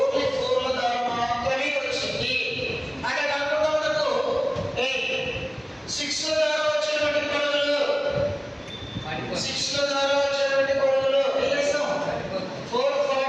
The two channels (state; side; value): identical; both; correlation 1.00